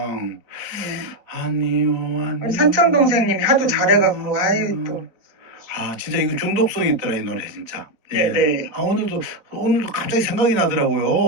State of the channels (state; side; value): late; left; 4.0 ms